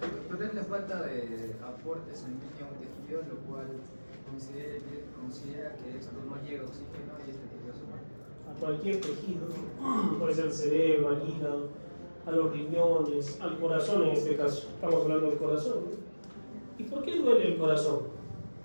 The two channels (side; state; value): both; inverted; correlation -1.00